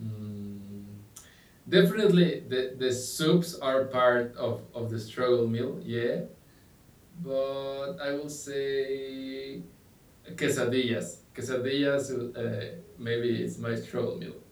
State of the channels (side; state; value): both; identical; correlation 1.00